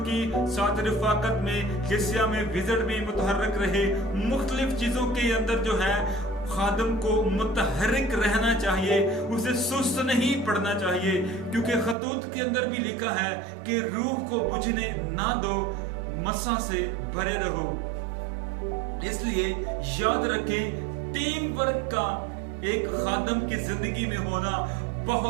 साथ रिफाकत में, कलीसिया में विजिट में मुतहर्रिक रहे। मुख्तलिफ चीजों के अंदर जो है खादम को मुतहर्रिक रहना चाहिए, उसे सुस्त नहीं पड़ना चाहिए, क्योंकि खतूत के अंदर भी लिखा है कि रूह को बुझने ना दो, मसा से भरे रहो। इसलिए याद रखें, टीम वर्क का एक खादम की जिंदगी में होना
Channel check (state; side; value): drops out; left; at 12.0 s